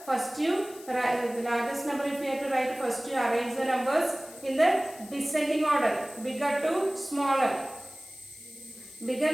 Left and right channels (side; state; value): left; noise; hiss, 19 dB below the sound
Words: first you write the largest number. If you have to write, first you arrange the numbers in the descending order, bigger to smaller. Bigger